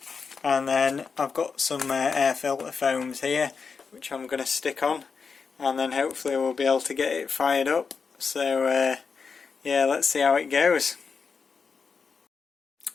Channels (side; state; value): right; quieter; 5.3 dB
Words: And then I've got some air filter foams here which I'm going to stick on, and then hopefully we'll be able to get it fired up. So yeah, let's see how it goes.